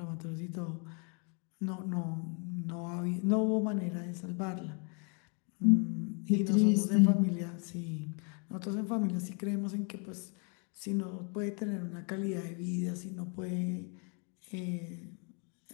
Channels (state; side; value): quieter; right; 37.2 dB